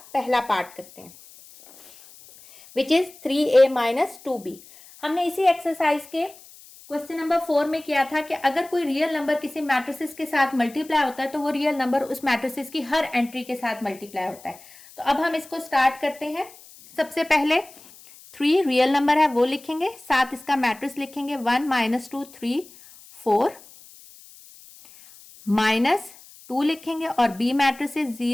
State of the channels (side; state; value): left; noise; hiss, 22 dB below the sound